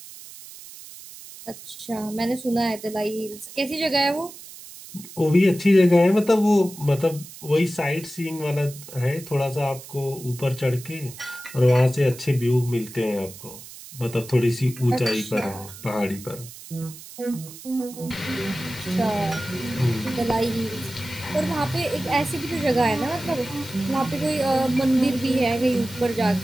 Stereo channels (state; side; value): noise; right; hiss, 16 dB below the sound